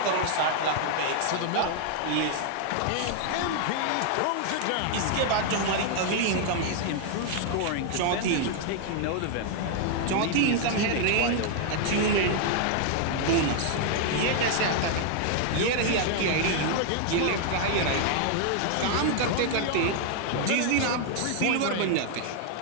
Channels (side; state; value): both; different; correlation 0.00